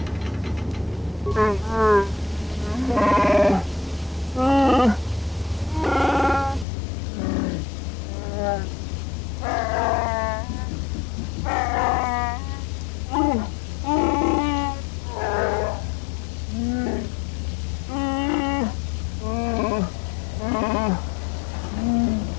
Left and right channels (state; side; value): drops out; right; at 6.7 s